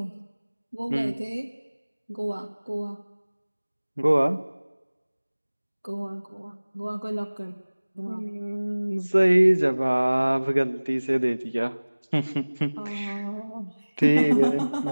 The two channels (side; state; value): both; inverted; correlation -1.00